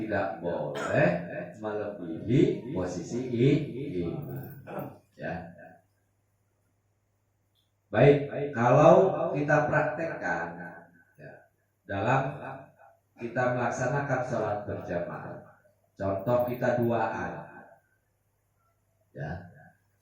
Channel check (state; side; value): identical; both; correlation 1.00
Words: boleh melebihi posisi imam. Ya. Baik, kalau kita praktekkan dalam kita melaksanakan sholat berjamaah, contoh kita duaan, ya,